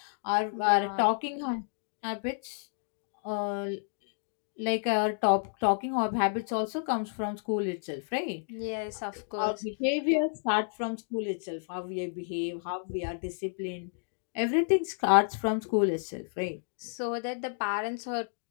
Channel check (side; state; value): right; silent; digital silence